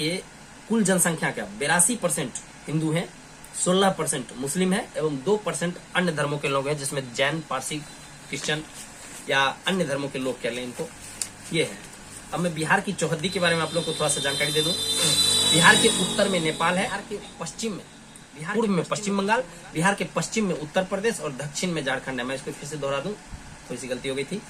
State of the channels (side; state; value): both; identical; correlation 1.00